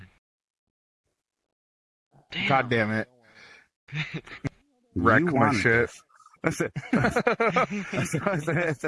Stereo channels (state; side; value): identical; both; correlation 1.00